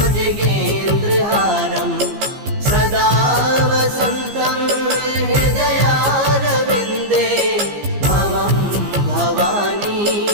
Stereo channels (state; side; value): late; left; 15 ms